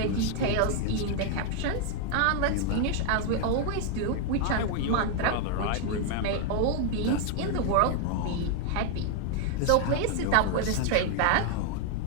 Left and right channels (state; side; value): different; both; correlation 0.00